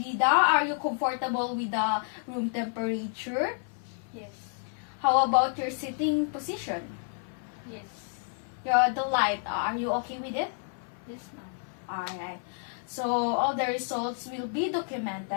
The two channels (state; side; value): silent; right; 57 dB below the other